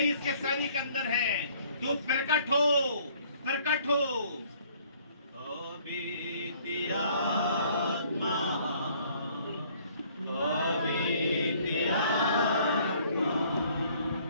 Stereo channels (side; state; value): both; inverted; correlation -0.59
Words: इसके सैनिक अंदर है, तू प्रकट हो, प्रकट हो। बीती आत्मा, बीती आत्मा,